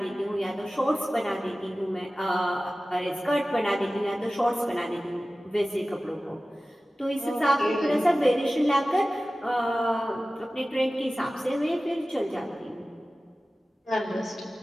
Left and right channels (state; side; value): normal; both; correlation 0.96